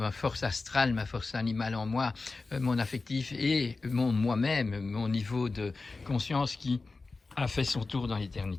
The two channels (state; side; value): quieter; right; 3.8 dB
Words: force astrale, ma force animale en moi, mon affectif et moi-même, mon niveau de conscience qui a fait son tour dans